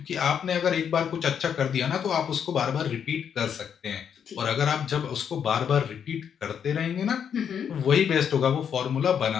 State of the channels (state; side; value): quieter; right; 8.0 dB